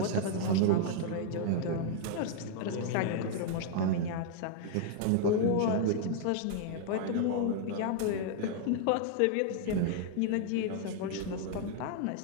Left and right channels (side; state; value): both; different; correlation 0.00